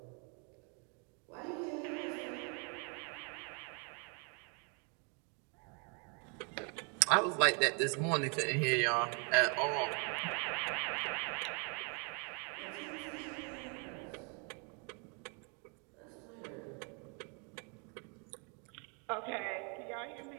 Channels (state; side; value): quieter; left; 37.0 dB